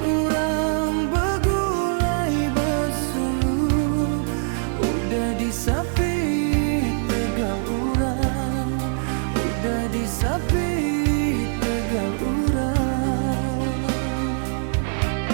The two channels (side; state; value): left; silent; 63 dB below the other